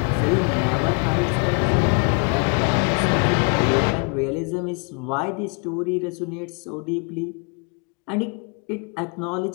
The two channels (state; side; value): quieter; right; 36.0 dB